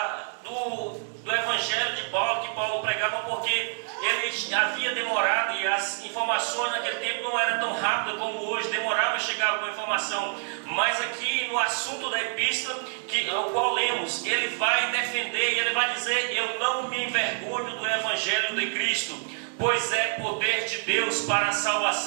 do Evangelho de Paulo, que Paulo pregava, porque ele havia demorado e as informações naquele tempo não eram tão rápidas como hoje, demorava a chegar alguma informação. Mas aqui no assunto da epístola, o qual lemos, ele vai defender e ele vai dizer: eu não me envergonho do Evangelho de Cristo, pois é poder de Deus para a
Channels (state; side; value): silent; left; 60 dB below the other